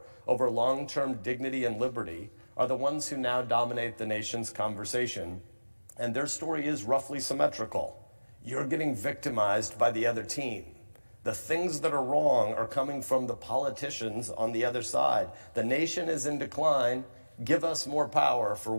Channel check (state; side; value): inverted; both; correlation -1.00